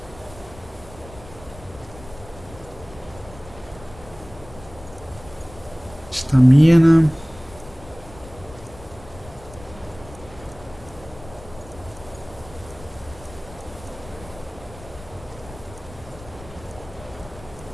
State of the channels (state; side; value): noise; left; rumble, 18 dB below the sound